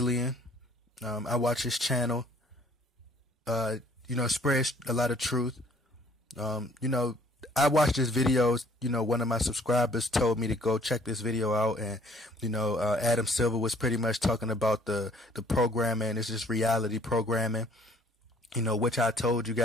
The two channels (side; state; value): both; normal; correlation 0.58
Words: I watch his channel. Spreads a lot of truth. I watched this video. One of my subscribers told me to go check this video out, and Adam Silver was pretty much talking about the programming. It's just reality programming. Which I told you